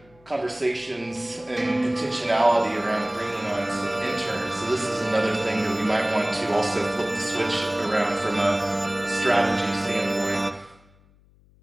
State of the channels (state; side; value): noise; left; hum, 29 dB below the sound